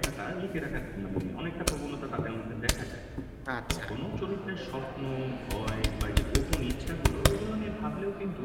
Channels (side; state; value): both; identical; correlation 1.00